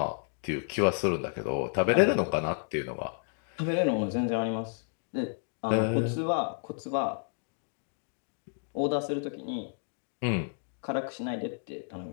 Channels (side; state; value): right; silent; digital silence